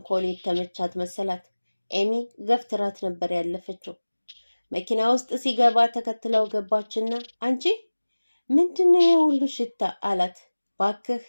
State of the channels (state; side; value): inverted; both; correlation -1.00